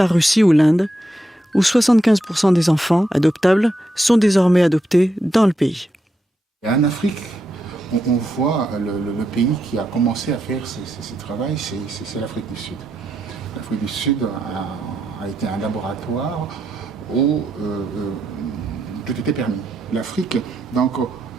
Russie ou l'Inde, où 75% des enfants adoptables sont désormais adoptés dans le pays. En Afrique, on voit le pays qui a commencé à faire ce travail, c'est l'Afrique du Sud. L'Afrique du Sud a été un laboratoire où tout était permis. L'Afrique, donc,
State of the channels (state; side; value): normal; both; correlation 0.83